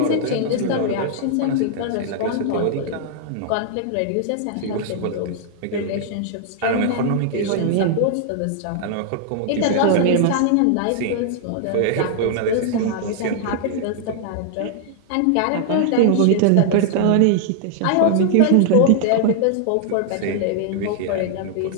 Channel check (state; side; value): different; both; correlation -0.01